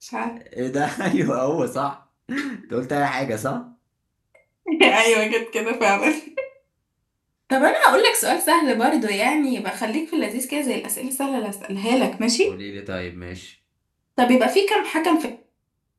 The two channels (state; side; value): identical; both; correlation 1.00